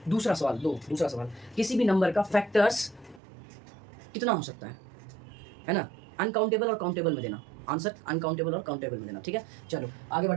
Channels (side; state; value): left; drops out; at 3.2 s